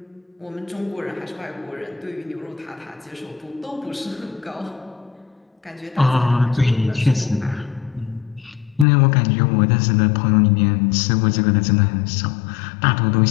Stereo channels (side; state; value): right; drops out; at 8.8 s